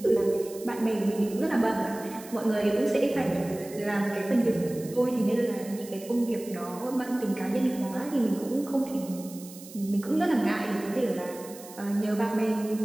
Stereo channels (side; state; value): right; noise; hiss, 17 dB below the sound